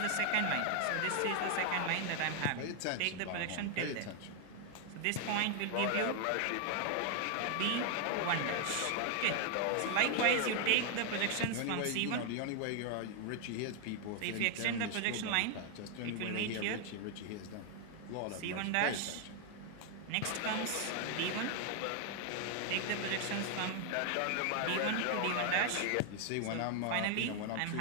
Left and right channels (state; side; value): different; both; correlation 0.00